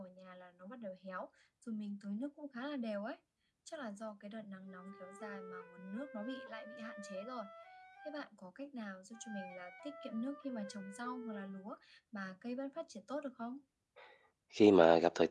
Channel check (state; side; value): identical; both; correlation 1.00